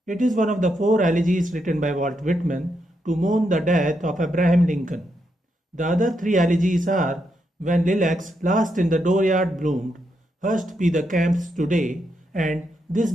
It is one of the four elegies written by Walt Whitman to mourn the death of Abraham Lincoln. The other three elegies are When Lilacs Last in the Dooryard Bloom'd, Hushed be the camps today, and This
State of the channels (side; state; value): both; normal; correlation 0.81